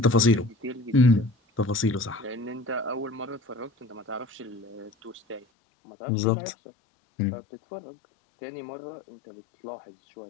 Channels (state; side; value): drops out; right; at 5.5 s